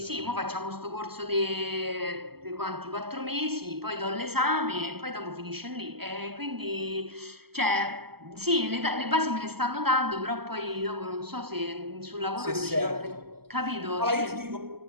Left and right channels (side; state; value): left; late; 0.96 ms